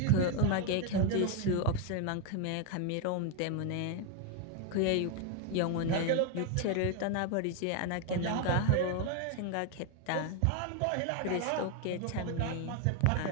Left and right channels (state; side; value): different; both; correlation 0.01